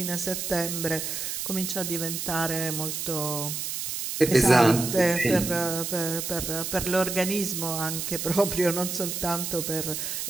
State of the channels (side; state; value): right; noise; hiss, 4 dB below the sound